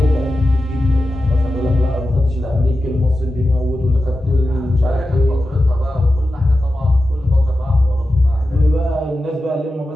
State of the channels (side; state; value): both; normal; correlation 0.92